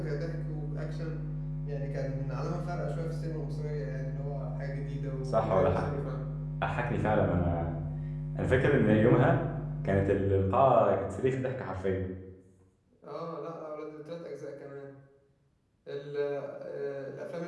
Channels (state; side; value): identical; both; correlation 1.00